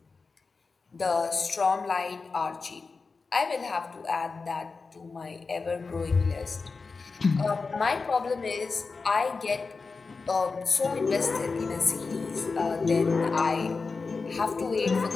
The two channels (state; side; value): quieter; right; 4.4 dB